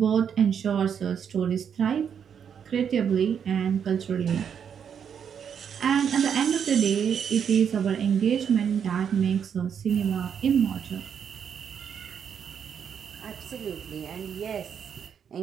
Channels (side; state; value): left; quieter; 7.7 dB